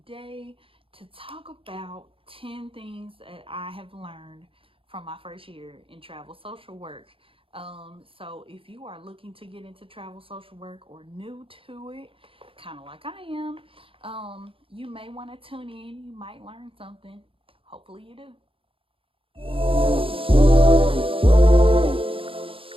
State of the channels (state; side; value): late; left; 0.26 ms